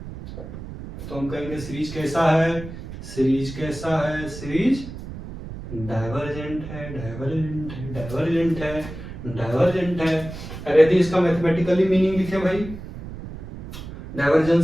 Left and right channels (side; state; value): right; noise; rumble, 11 dB below the sound